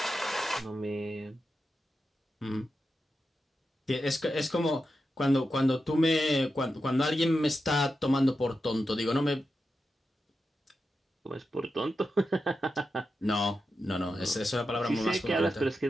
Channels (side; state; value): both; normal; correlation 0.89